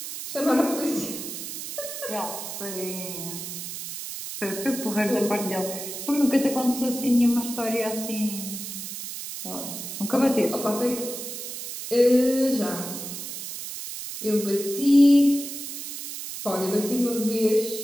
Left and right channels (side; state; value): right; noise; hiss, 8 dB below the sound